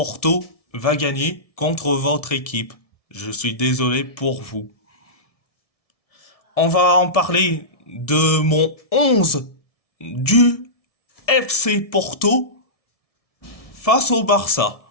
va gagner contre votre équipe. Je suis désolé pour vous. On va en parler de mon 11 du FC Porto face au Barça.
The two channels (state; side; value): late; right; 1.7 ms